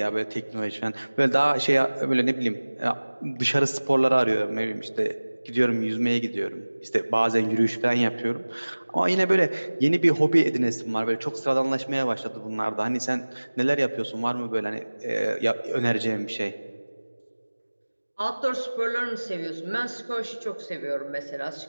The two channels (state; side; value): inverted; both; correlation -1.00